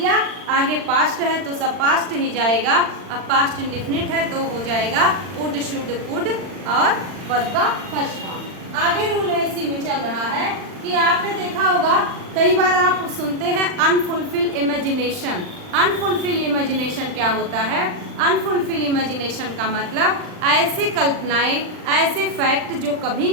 आगे पास्ट है तो सब पास्ट ही जाएगा। अब पास्ट इंडेफिनिट है तो हो जाएगा वुड, शुड, कुड और वर्ब का फर्स्ट फॉर्म। आगे रूल है इसी में चल रहा है कि आपने देखा होगा कई बार आप सुनते हैं अनफुलफिल इमेजिनेशन। अनफुलफिल इमेजिनेशन क्या होता है? अनफुलफिल इमेजिनेशन का मतलब ऐसे कल्पनाएं, ऐसे फैक्ट जो कभी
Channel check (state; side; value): late; left; 39 ms